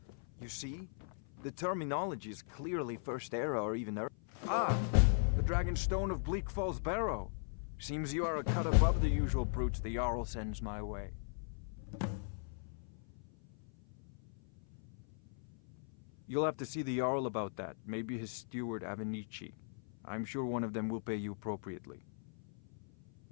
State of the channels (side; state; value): right; silent; 52 dB below the other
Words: You see? The terminology is clearly First Era or even Earth. Ah! The Dragonstone of Bleak Falls Barrow. Seems you are a cut above the usual brutes the Jarl sends my way. You'll have to see the Jarl about that. Maybe his steward Avenici. I'm sure one of them will pay you appropriately.